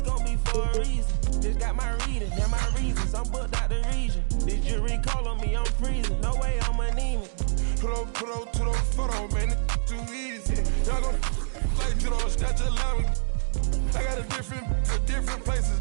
gon' be for a reason. Just got my reading, yeah, my reasons. I'm booked out the region. This jury call on me, I'm freezing. No way I'm anemic. Put up to the photo, man, it's too easy. Y'all gon' like you don't snatch a line. I got a different places,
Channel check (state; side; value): silent; left; digital silence